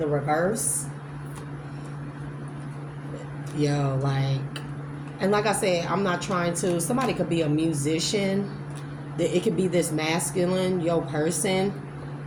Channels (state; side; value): identical; both; correlation 1.00